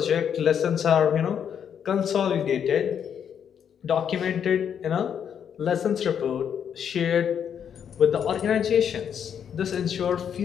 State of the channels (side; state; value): right; quieter; 8.2 dB